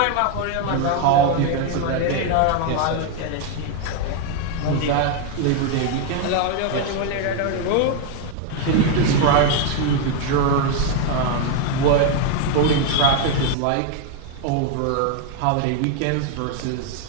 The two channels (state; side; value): different; both; correlation 0.01